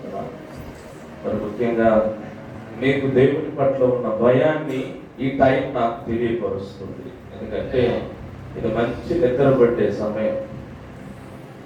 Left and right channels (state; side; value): identical; both; correlation 1.00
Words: మరి ముఖ్యంగా మీకు దేవుని పట్ల ఉన్న భయాన్ని ఈ టైం నాకు తెలియపరుస్తుంది. ఎందుకంటే ఇది మంచి నిద్ర పట్టే సమయం.